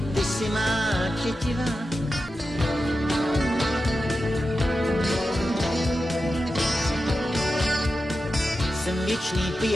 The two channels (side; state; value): both; normal; correlation 0.91